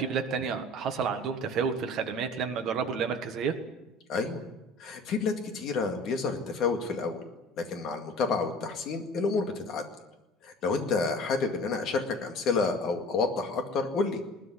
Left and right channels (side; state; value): both; normal; correlation 0.43